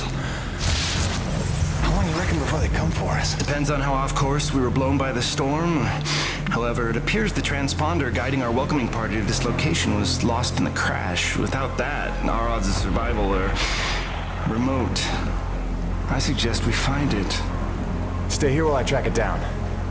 How long you reckon before they come for us? Depends on how off course we were blown by the storm. However, it appears the transponder guiding our welcoming party to this location was lost in the crash. Without that, our odds of survival are remote. I suggest we find it. Stay here while I track it down.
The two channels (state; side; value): identical; both; correlation 1.00